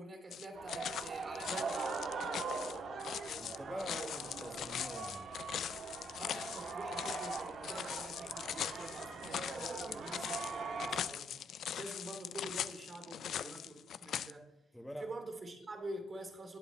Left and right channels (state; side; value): normal; both; correlation 0.71